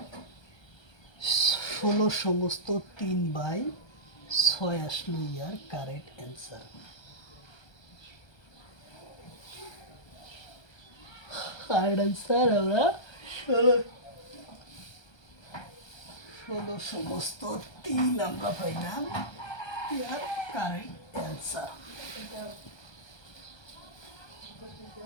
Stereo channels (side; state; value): right; late; 1.3 ms